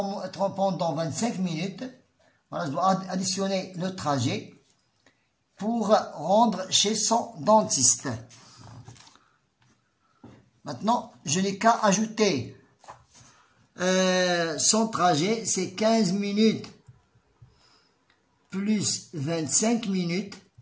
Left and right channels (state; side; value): identical; both; correlation 1.00